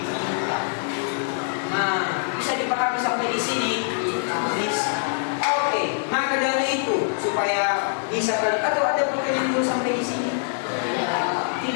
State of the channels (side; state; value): right; silent; digital silence